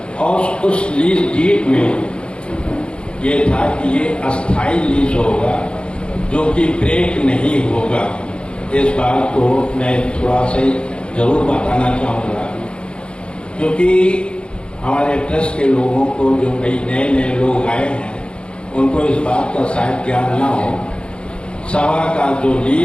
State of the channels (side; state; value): right; late; 0.056 ms